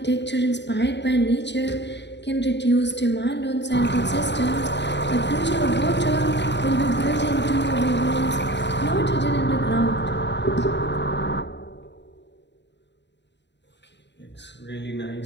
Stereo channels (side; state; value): right; late; 0.51 ms